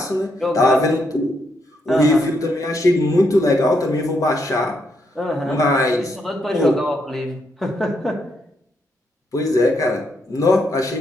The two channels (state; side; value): normal; both; correlation 0.78